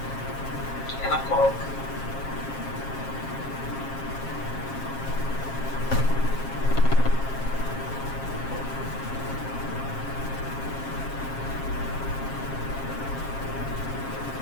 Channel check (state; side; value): late; right; 7.4 ms